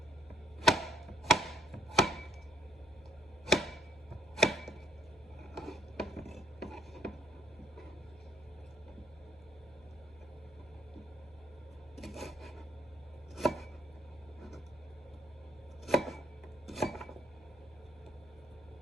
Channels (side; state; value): left; noise; hum, 25 dB below the sound